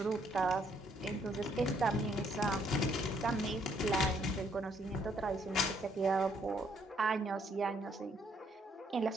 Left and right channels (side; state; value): both; normal; correlation 0.69